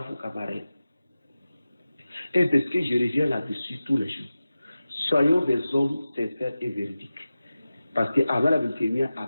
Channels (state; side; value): inverted; both; correlation -0.95